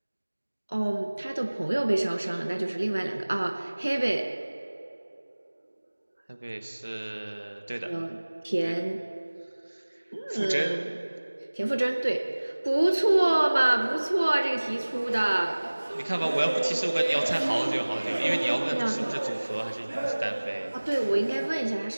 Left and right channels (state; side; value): inverted; both; correlation -1.00